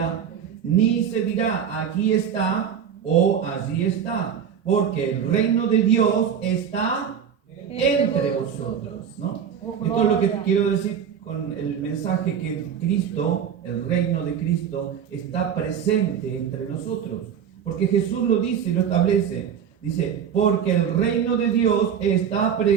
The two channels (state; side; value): quieter; left; 8.1 dB